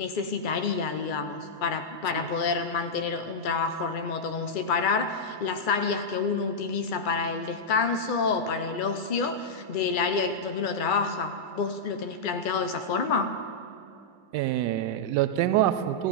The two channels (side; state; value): right; late; 2.3 ms